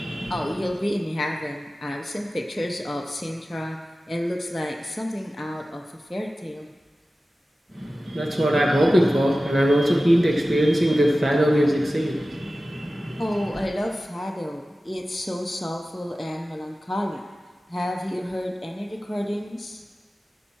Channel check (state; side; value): normal; both; correlation 0.95